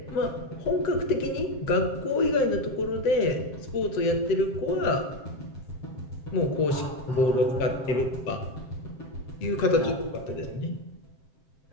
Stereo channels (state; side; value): late; right; 7.6 ms